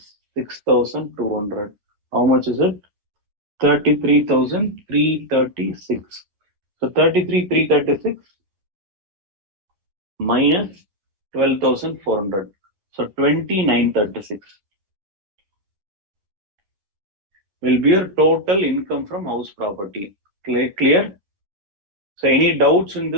6,200. How much is it? 33,336. So 33,336 minus 12,400. So 29,36 will be your total income from house property. Clear? So any doubts in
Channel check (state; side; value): late; left; 11 ms